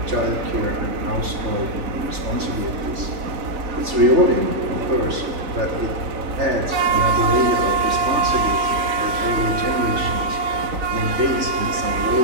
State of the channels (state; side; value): late; left; 3.4 ms